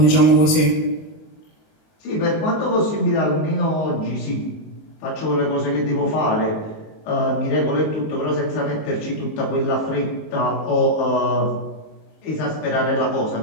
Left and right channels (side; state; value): right; late; 19 ms